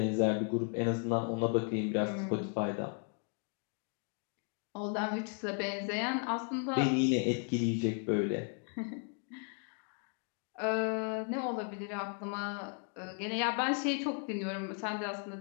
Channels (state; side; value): quieter; right; 38.6 dB